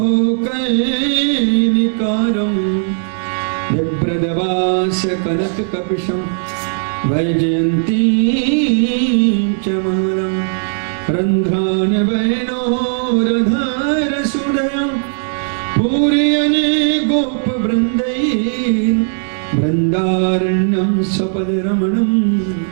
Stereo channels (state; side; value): silent; left; digital silence